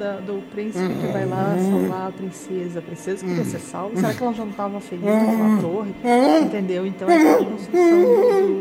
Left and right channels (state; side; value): identical; both; correlation 1.00